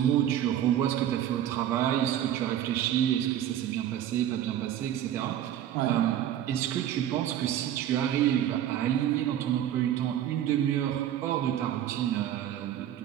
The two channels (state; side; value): quieter; left; 11.2 dB